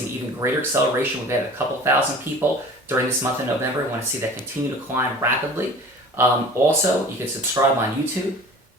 an even greater acceleration. We've had a couple thousand people during this month of November. We want to see that continue to climb rapidly. Also, you can subscribe on YouTube.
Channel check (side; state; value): both; normal; correlation 0.42